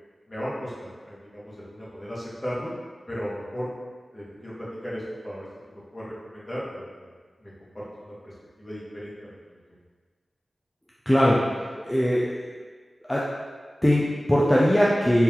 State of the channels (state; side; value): normal; both; correlation 0.97